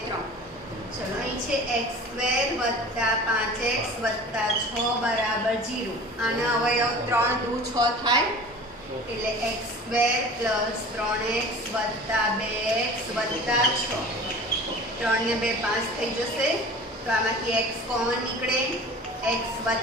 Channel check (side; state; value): both; normal; correlation 0.40